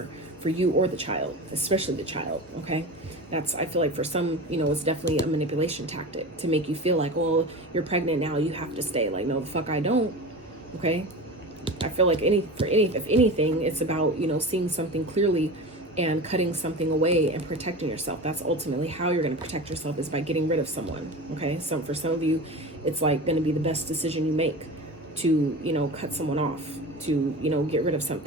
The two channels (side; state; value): both; normal; correlation 0.30